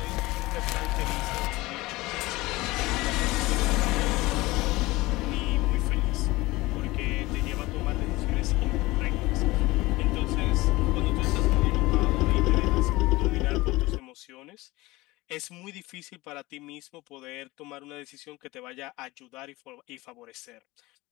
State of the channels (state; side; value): quieter; right; 20.4 dB